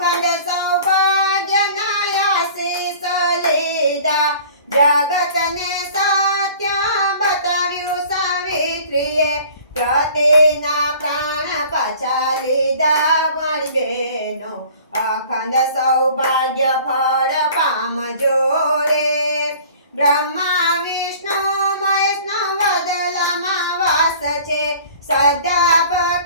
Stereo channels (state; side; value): inverted; both; correlation -0.47